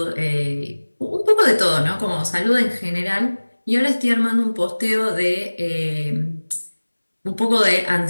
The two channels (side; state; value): both; inverted; correlation -1.00